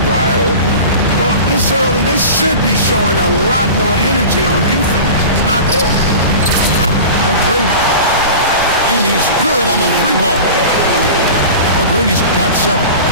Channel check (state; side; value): inverted; both; correlation -0.34